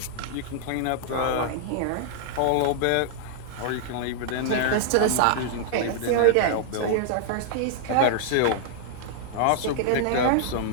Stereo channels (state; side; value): different; both; correlation -0.01